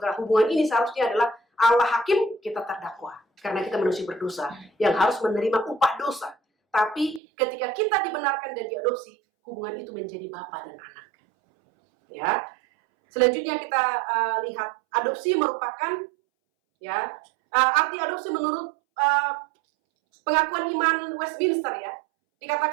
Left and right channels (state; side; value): drops out; left; at 7.2 s